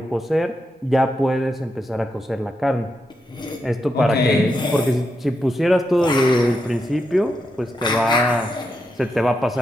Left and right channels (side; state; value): both; normal; correlation 0.84